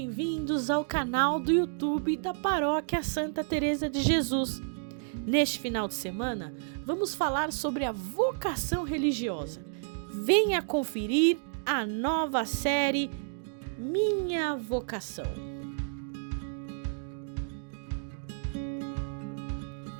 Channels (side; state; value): left; silent; digital silence